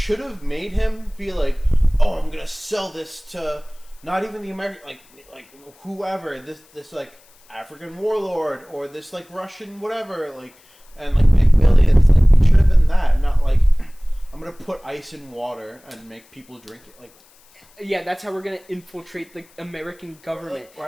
have made him be like, oh, I'm gonna sell this to not even the American, like whoever, this like, African warlord, or this, like, Russian whatever, like, and, like, make millions. Like, it should have been that, not like, I'm gonna put ice in water and make people drink it, like... Yeah, that's how we're gonna infiltrate the American government.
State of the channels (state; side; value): noise; left; hiss, 29 dB below the sound